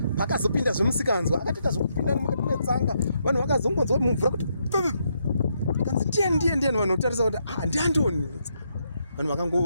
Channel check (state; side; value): inverted; both; correlation -0.78